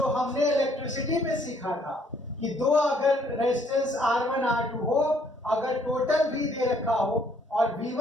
हमने इलेक्ट्रिसिटी में सीखा था कि 2 अगर रेजिस्टेंस R1 R2 हो, अगर टोटल V दे रखा हो और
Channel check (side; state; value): both; normal; correlation 0.65